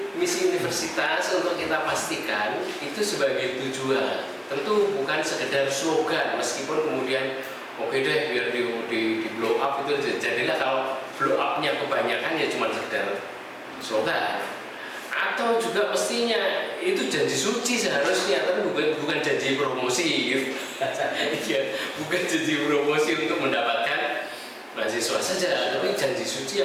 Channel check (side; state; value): both; identical; correlation 1.00